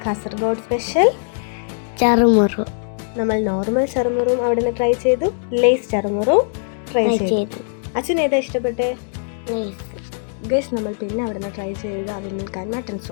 കാസർഗോഡ് സ്പെഷ്യൽ ചറുമുറു. നമ്മൾ നോർമൽ ചറുമുറും അവിടെ നിന്ന് ട്രൈ ചെയ്തു, ലേസ് ചറുമുറും ട്രൈ ചെയ്തു. അച്ഛൻ ഏതാ ഇഷ്ടപ്പെട്ടെ? ഗൈസ്, നമ്മൾ പിന്നെ അവിടെ നിന്ന് ട്രൈ ചെയ്ത് അവിൽ മട്ടൺ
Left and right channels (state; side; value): silent; right; digital silence